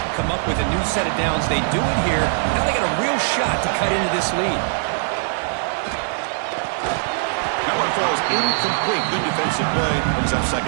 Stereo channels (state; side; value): silent; left; digital silence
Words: and come up with a new set of downs. They do it here. Now they got a real shot to cut into this lead. That one falls incomplete. Good defensive play. Brings up